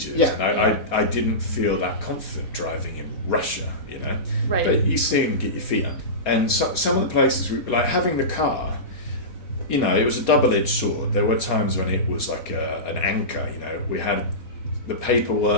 Yeah. And I didn't feel that confident driving in Russia, Right. But you see them get your feet up. And some of the places, like having the car, it was a double-edged sword. There were times when it was like an anchor, We had the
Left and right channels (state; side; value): late; right; 4.5 ms